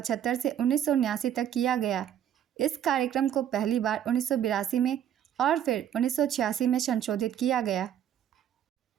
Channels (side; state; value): left; quieter; 10.0 dB